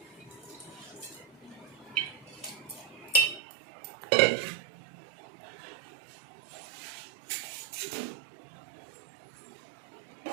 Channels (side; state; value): left; drops out; at 3.4 s